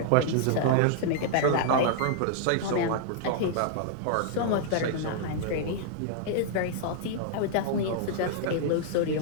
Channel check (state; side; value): different; both; correlation -0.01